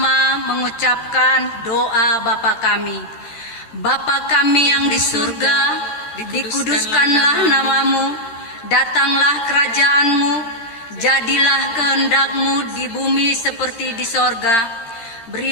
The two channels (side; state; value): right; late; 13 ms